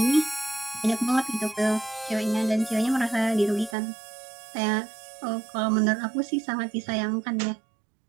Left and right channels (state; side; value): drops out; left; at 3.8 s